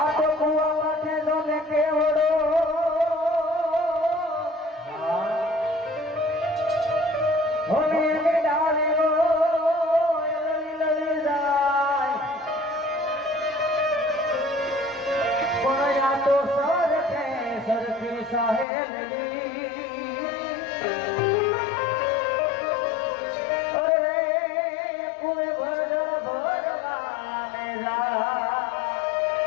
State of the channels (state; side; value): drops out; right; at 18.7 s